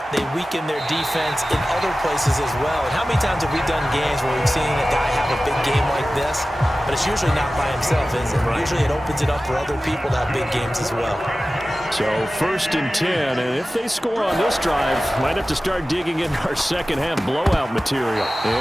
they weaken their defense in other places as well. And how many times have we done games where we've seen a guy have a big game like this, but it's It's usually not by himself, is it? Right. Usually it opens it up for other people to have big games as well. So 1st and 10, and if they score on this drive, might have to start digging in our second half blowout material.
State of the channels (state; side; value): normal; both; correlation 0.96